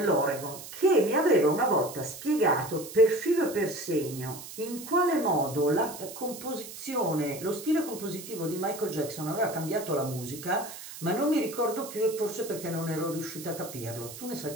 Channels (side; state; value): right; noise; hiss, 13 dB below the sound